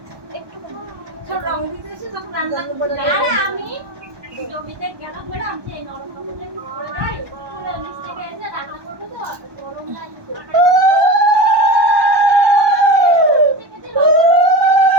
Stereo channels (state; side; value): late; left; 1.2 ms